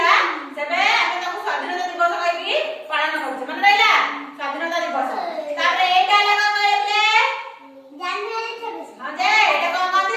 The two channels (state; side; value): identical; both; correlation 1.00